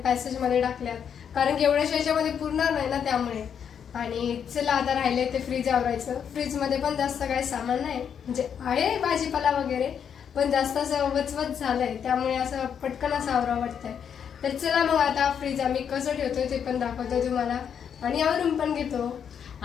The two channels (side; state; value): right; quieter; 7.8 dB